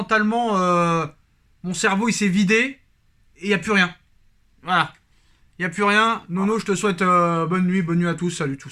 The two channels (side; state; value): both; identical; correlation 1.00